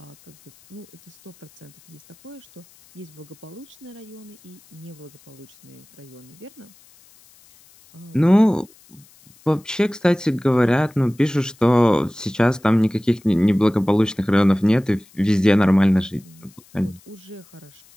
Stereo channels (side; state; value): left; noise; hiss, 28 dB below the sound